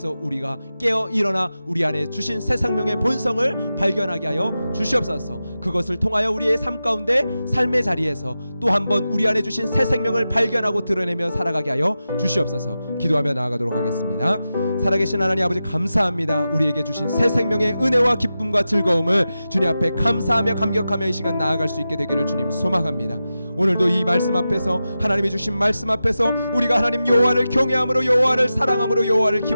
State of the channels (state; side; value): inverted; both; correlation -0.92